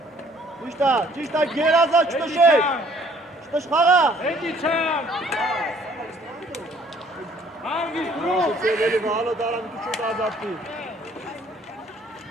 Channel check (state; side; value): normal; both; correlation 0.60